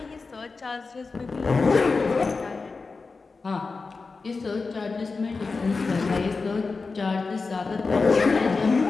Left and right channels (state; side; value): quieter; right; 4.2 dB